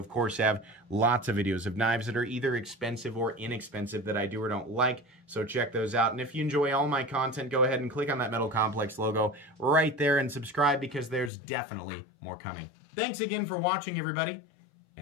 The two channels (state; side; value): drops out; right; at 11.3 s